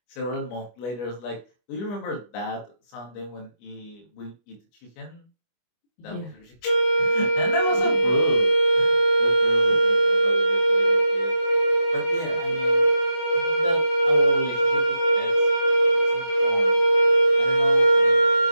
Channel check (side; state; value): right; late; 25 ms